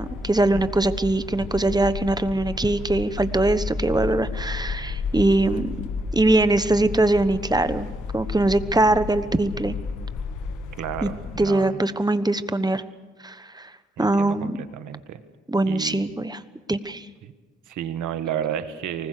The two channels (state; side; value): normal; both; correlation 0.79